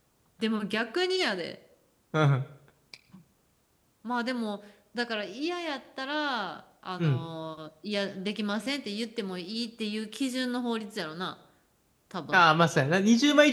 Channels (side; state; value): both; identical; correlation 1.00